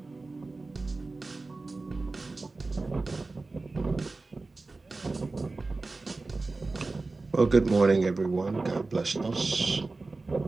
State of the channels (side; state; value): left; quieter; 3.5 dB